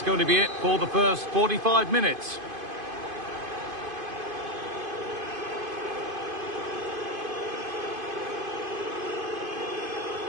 going to be it for the first 45 minutes.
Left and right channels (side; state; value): left; late; 2.5 ms